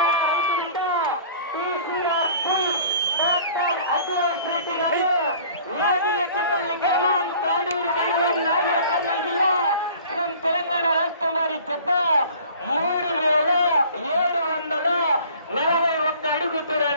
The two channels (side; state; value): both; inverted; correlation -0.49